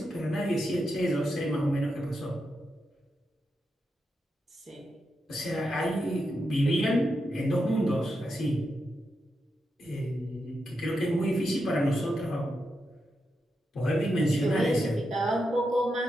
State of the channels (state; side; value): normal; both; correlation 0.86